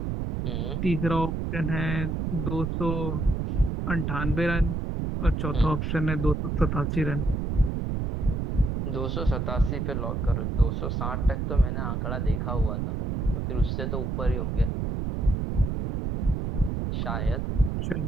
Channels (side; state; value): right; noise; rumble, 1 dB below the sound